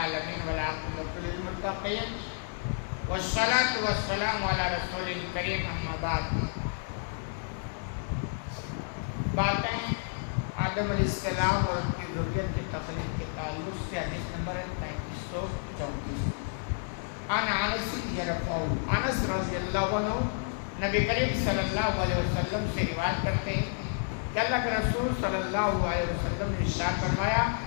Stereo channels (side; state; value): right; silent; digital silence